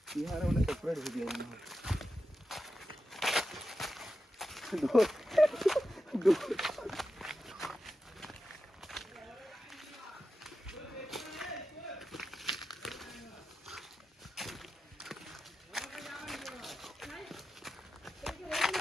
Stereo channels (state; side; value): normal; both; correlation 0.90